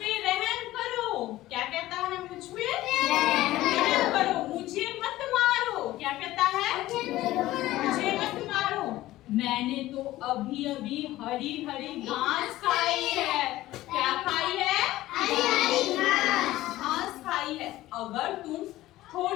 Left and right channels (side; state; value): right; quieter; 16.1 dB